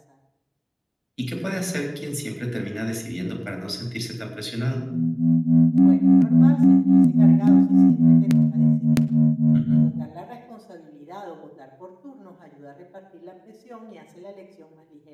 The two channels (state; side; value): identical; both; correlation 1.00